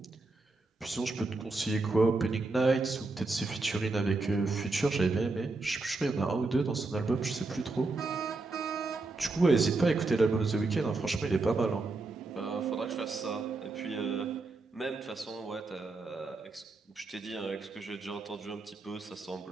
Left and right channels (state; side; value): quieter; left; 3.4 dB